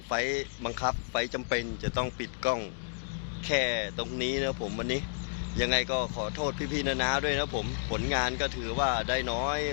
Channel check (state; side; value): silent; right; digital silence